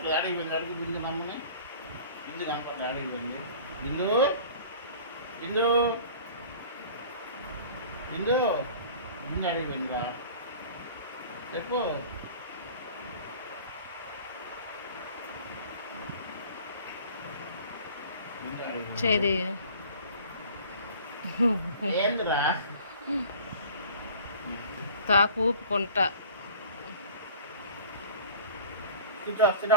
అడిగి పోయింది. అడుగు బిందు నమ్మని. బిందు కనపట్లేదు. అడిగి పోయింది. బిందు బిందు బిందు బిందు అడిగి పోయిందిరా చెప్పు. చేది ఏందిరా తాకు ఊపుకుంటా.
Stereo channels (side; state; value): both; inverted; correlation -0.44